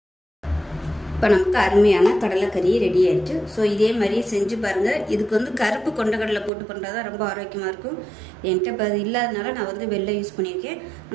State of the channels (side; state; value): left; drops out; at 6.5 s